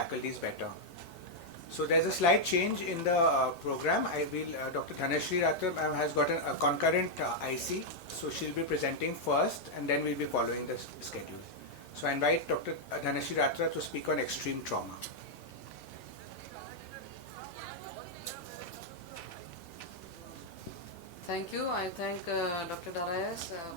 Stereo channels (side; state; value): both; normal; correlation -0.02